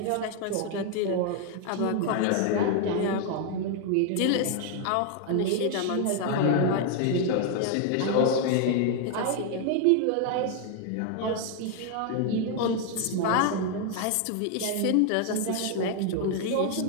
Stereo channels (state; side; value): different; both; correlation 0.00